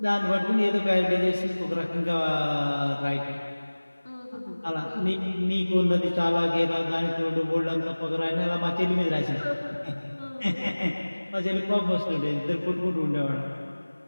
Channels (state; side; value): inverted; both; correlation -1.00